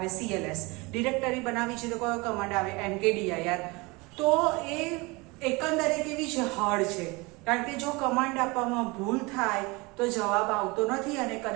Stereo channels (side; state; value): left; quieter; 25.3 dB